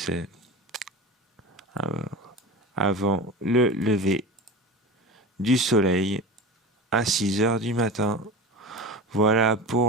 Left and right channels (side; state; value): both; normal; correlation 0.30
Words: avant le lever du soleil à 6 heures du matin. Voilà